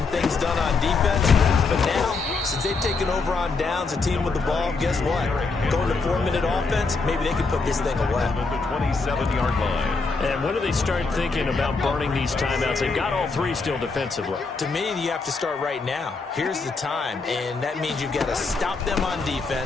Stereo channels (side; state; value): right; quieter; 4.1 dB